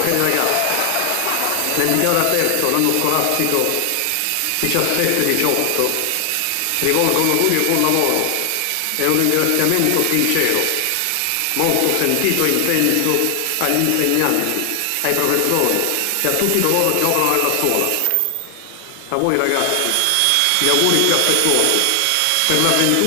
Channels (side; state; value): both; different; correlation 0.00